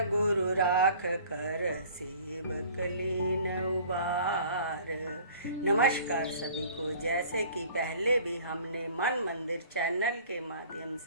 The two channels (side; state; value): both; inverted; correlation -0.49